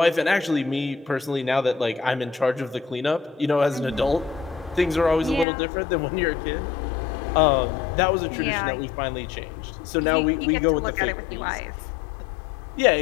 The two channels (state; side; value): drops out; right; at 5.5 s